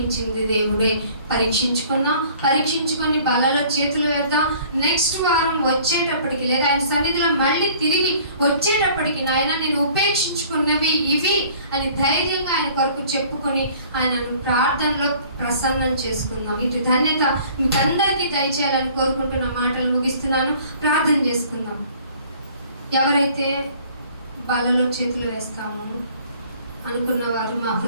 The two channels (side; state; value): both; inverted; correlation -0.53